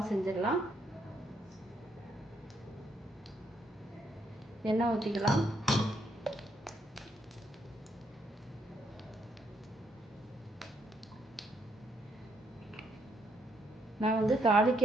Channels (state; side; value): normal; both; correlation 0.73